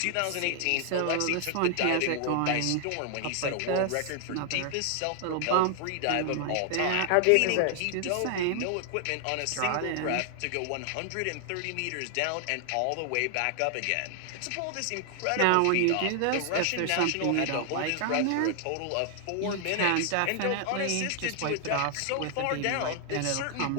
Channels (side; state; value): both; different; correlation 0.00